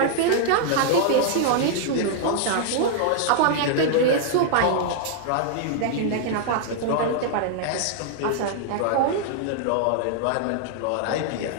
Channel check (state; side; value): different; both; correlation -0.01